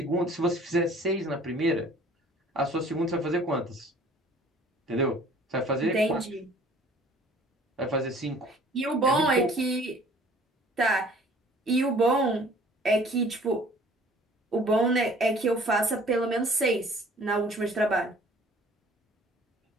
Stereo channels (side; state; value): both; normal; correlation 0.52